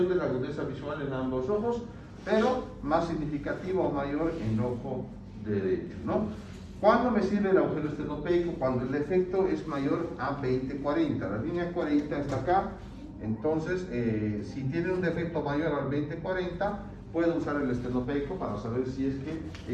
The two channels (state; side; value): identical; both; correlation 1.00